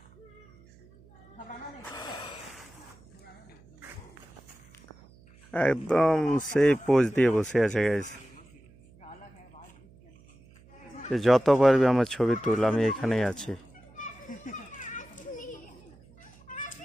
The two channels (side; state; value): right; noise; hum, 26 dB below the sound